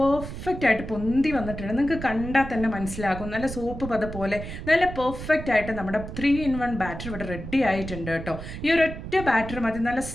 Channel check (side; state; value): right; noise; rumble, 9 dB below the sound